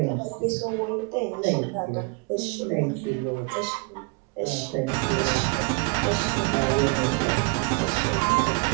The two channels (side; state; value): left; quieter; 29.4 dB